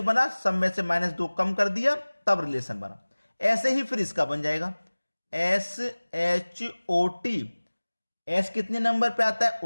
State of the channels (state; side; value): inverted; both; correlation -1.00